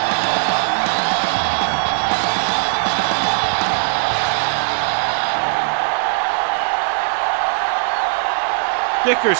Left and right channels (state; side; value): silent; left; digital silence